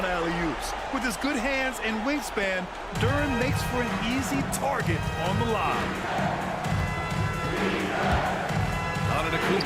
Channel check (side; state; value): both; identical; correlation 1.00